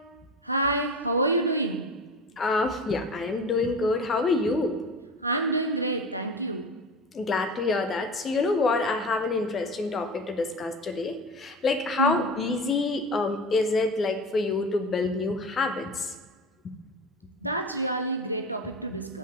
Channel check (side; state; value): both; normal; correlation 0.30